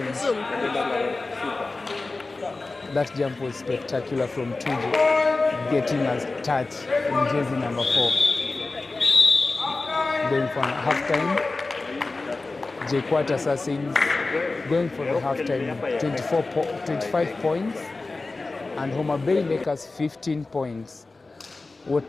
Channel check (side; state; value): right; quieter; 3.5 dB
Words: That jump was spectacular from Tuju, getting a touch in jersey number 4. Going for halftime. Jkuat Assassins going for the halftime, 25 points. And Homabay Lakers 15 points.